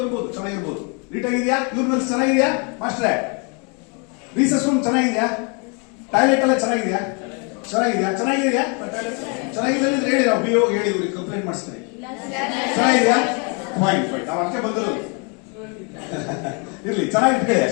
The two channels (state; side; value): quieter; right; 34.8 dB